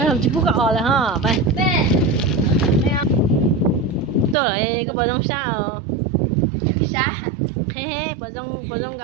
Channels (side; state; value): left; drops out; at 4.4 s